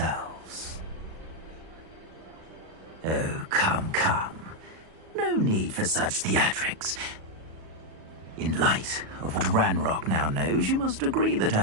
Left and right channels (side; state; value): left; late; 37 ms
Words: Oh, come, come. No need for such theatrics. In light of what Ranrock now knows, you must agree that